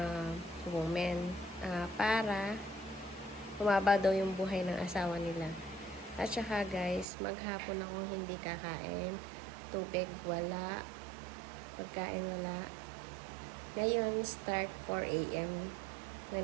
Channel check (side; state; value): left; drops out; at 7.1 s